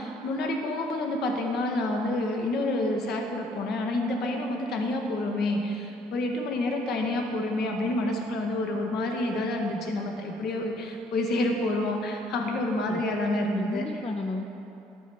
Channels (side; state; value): both; normal; correlation 0.63